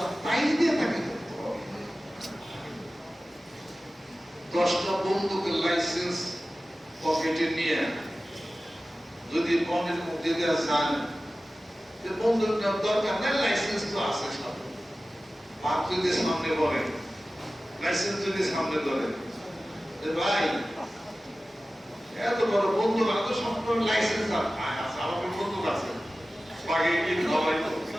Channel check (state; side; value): normal; both; correlation 0.96